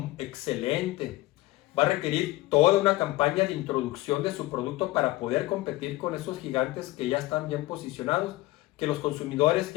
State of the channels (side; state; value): right; quieter; 18.8 dB